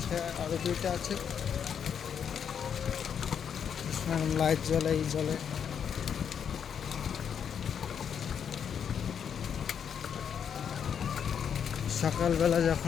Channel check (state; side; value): quieter; right; 7.8 dB